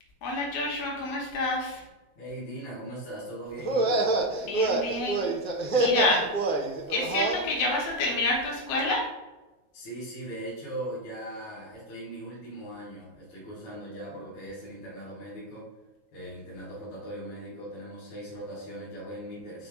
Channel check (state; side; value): late; right; 9.4 ms